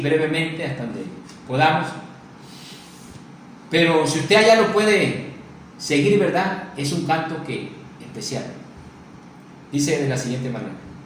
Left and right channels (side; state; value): both; identical; correlation 1.00